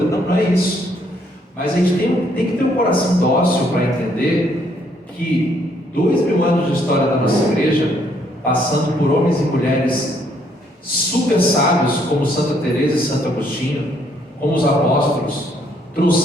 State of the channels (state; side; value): normal; both; correlation 0.69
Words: Não, não é isso. Mas a gente tem que ter um coração dócil para entender que 2000 anos de história da nossa igreja, passando por homens e mulheres super sábios, como Santa Teresa e Santo Agostinho, como os apóstolos,